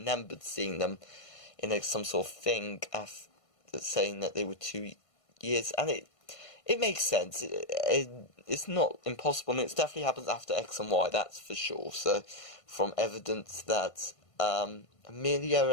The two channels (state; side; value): late; right; 1.5 ms